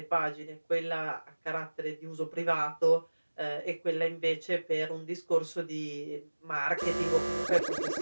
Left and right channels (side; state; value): both; inverted; correlation -1.00